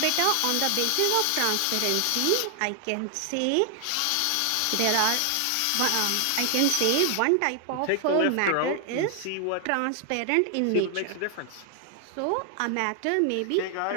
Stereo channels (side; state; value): both; different; correlation 0.00